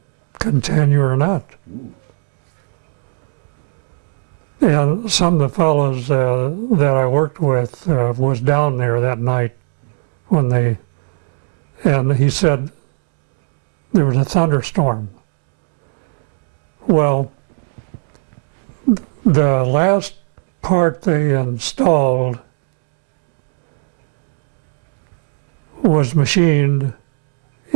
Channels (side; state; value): left; silent; 67 dB below the other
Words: continue or not. Ooh. And some of the fellows that I worked with was down there that night and he said there was a thunderstorm. Well, the last part they installed was machined